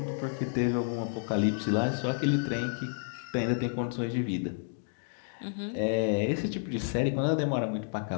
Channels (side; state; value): right; silent; digital silence